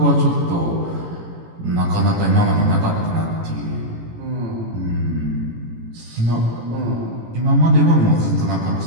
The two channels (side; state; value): left; late; 18 ms